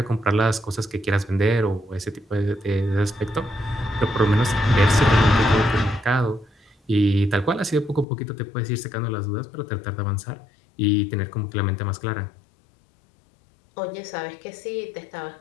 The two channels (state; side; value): drops out; right; at 8.1 s